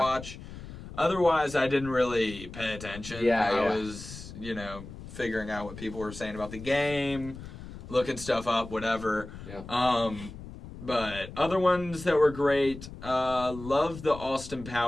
watch. Otherwise, I didn't really pay attention. I was, figuring out what people were saying about the game, looking stuff up, whatever. Yeah. But other ones that were great, loved the Austin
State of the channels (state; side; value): noise; left; rumble, 13 dB below the sound